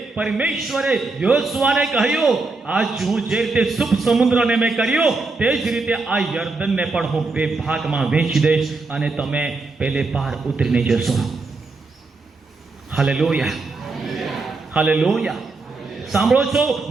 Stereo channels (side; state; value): left; quieter; 3.7 dB